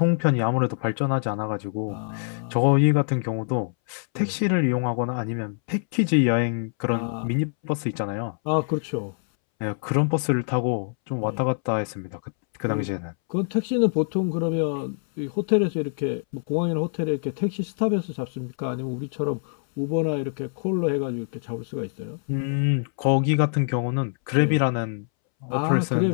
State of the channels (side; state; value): right; silent; 62 dB below the other